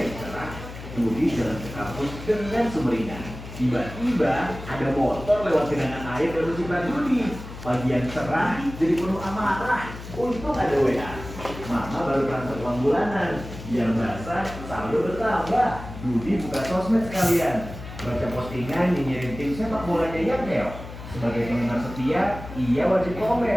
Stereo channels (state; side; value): noise; left; hum, 12 dB below the sound